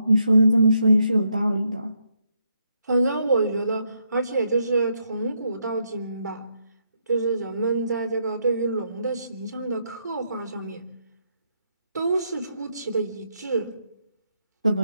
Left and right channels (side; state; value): both; inverted; correlation -0.78